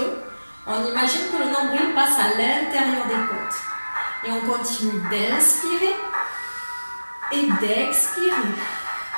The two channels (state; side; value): inverted; both; correlation -1.00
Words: On imagine que le nombril passe à l'intérieur des côtes. Et on continue d'inspirer et d'expirer.